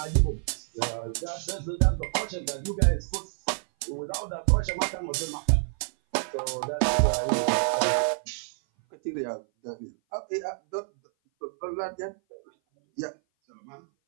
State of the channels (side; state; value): left; silent; 57 dB below the other